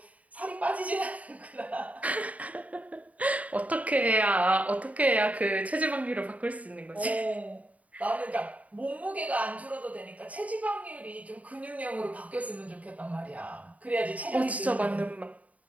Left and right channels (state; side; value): late; left; 0.070 ms